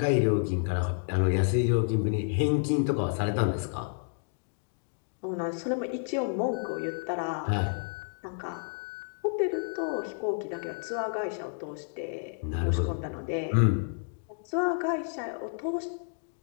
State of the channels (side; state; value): right; silent; digital silence